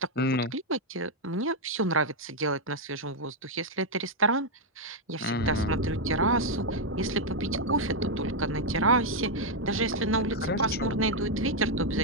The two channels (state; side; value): normal; both; correlation -0.01